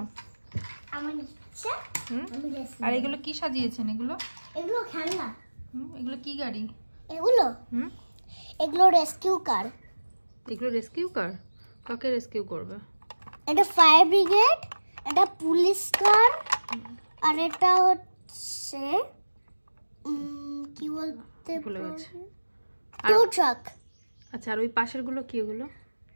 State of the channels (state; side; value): inverted; both; correlation -1.00